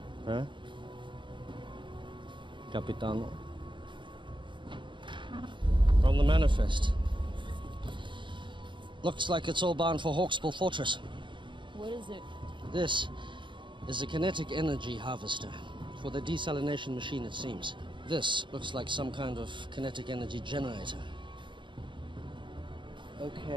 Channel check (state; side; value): late; left; 0.23 ms